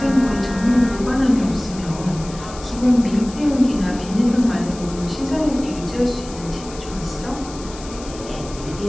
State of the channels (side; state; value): left; noise; hiss, 16 dB below the sound